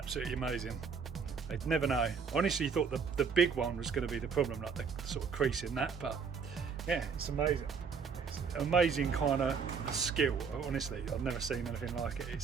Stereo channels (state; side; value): quieter; left; 5.9 dB